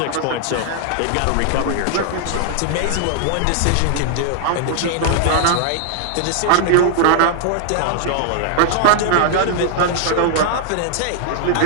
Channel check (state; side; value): different; both; correlation 0.00